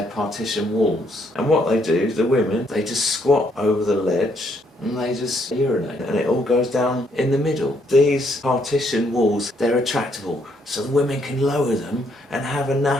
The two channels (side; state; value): both; normal; correlation 0.71